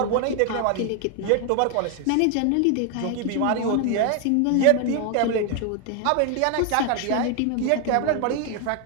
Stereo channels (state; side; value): different; both; correlation 0.01